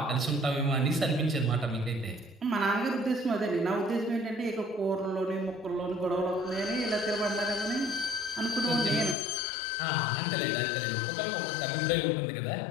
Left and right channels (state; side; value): drops out; right; at 9.2 s